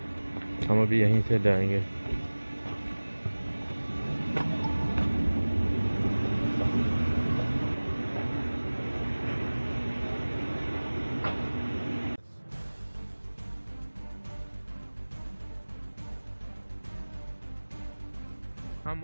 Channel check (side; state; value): both; inverted; correlation -1.00